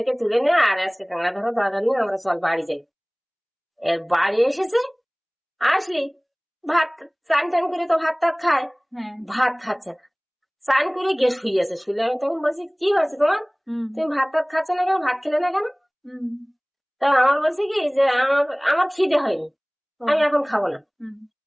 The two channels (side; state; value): both; identical; correlation 1.00